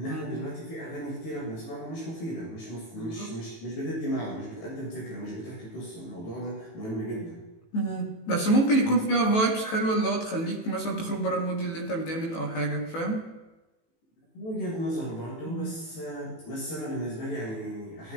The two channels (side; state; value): right; late; 18 ms